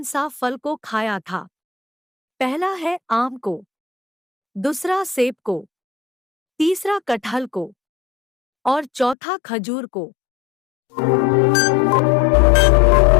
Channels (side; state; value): right; drops out; at 9.2 s